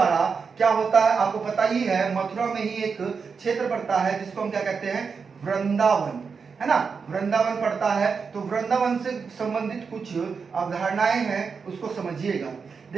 क्या होता है आपको पता ही है। मथुरा में ही एक क्षेत्र पड़ता है जिसको हम क्या कहते हैं? वृंदावन, है ना, वृंदावन पड़ता है। तो वृंदावन से संबंधित कुछ अवधारणाएं हैं, उसको समझिएगा।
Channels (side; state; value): left; quieter; 5.5 dB